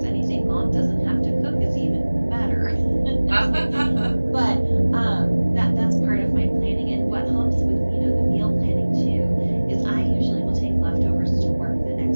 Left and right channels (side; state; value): both; inverted; correlation -1.00